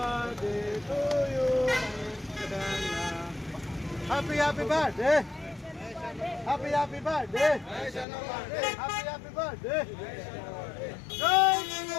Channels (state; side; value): drops out; right; at 8.1 s